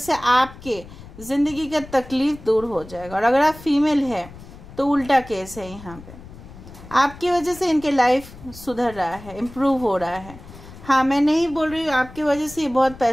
आपके ज़िंदगी का तकलीफ दूर हो जाएगा। और अगर आप फीमेल है तो उल्टा केस है, यहाँ पे आपकी वजह से इनके लाइफ सुधर रहा है, इम्प्रूव हो रहा है। हाँ, मैं नहीं बोल रही हूँ आपकी वजह से ये बहुत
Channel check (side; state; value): left; noise; rumble, 17 dB below the sound